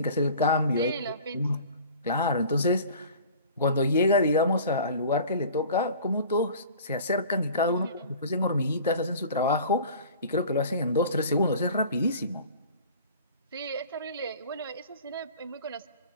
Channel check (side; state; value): both; inverted; correlation -0.43